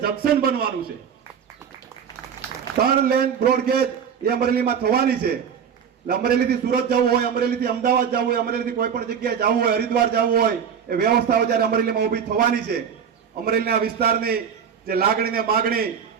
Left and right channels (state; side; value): quieter; left; 7.5 dB